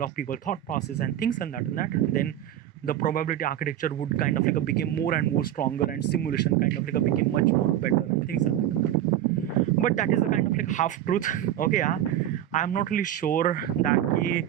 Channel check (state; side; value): quieter; left; 11.8 dB